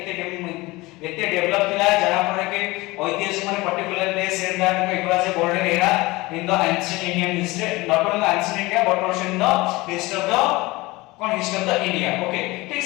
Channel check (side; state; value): right; quieter; 21.6 dB